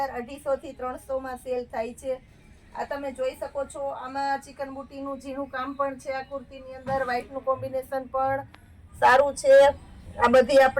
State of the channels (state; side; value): identical; both; correlation 1.00